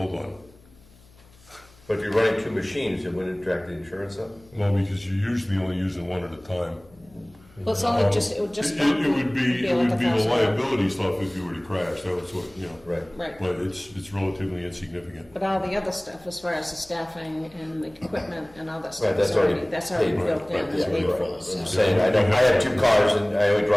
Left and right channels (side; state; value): left; noise; hum, 27 dB below the sound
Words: one. But if you're running 2 machines, it wouldn't jack the insurance up? Well, because you're usually only using one at a time. Well, it's only just, it would just. It would be like the $1,000. liability stuff if you were to crash. That was what, Right. Right. But it's relatively insignificant. But all the other stuff, as far as the staffing and the equipment and all that Right, stuff, that's is already that's already paid, built in, right, and yeah, paid you're for. right. I'm So. saying, I have 2 cars and I only